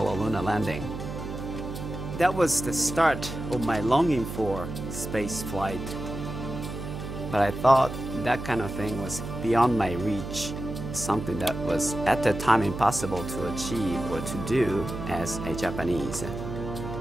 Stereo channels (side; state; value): right; noise; hum, 7 dB below the sound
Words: lunar landing, that was the start of my longing for space flight. But I thought that kind of thing was beyond my reach, something that was at the time impossible to achieve or to do as a Japanese.